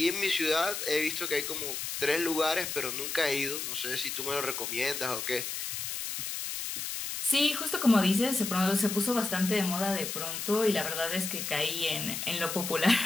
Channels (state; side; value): noise; left; hiss, 4 dB below the sound